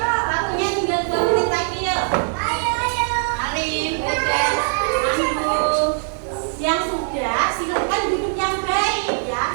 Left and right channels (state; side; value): silent; left; digital silence